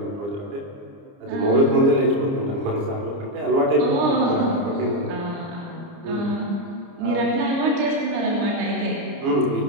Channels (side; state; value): left; late; 29 ms